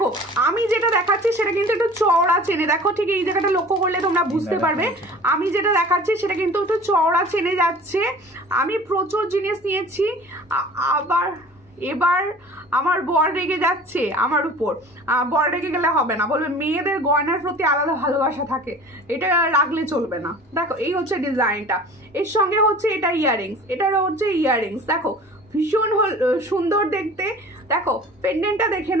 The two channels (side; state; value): both; normal; correlation 0.44